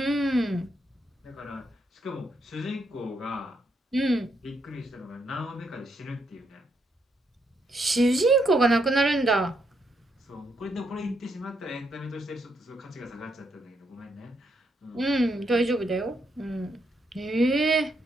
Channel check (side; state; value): both; normal; correlation 0.77